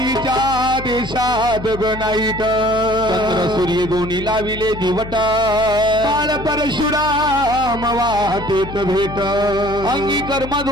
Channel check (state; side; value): noise; left; hum, 11 dB below the sound